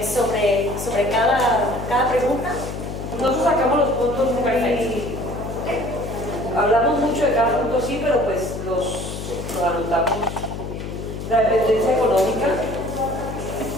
sobre cada pregunta. Nosotros sacamos los puntos muy... Hablamos mucho de cada punto, sí, pero pues los anotamos. La dependencia económica,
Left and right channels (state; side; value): noise; left; hum, 7 dB below the sound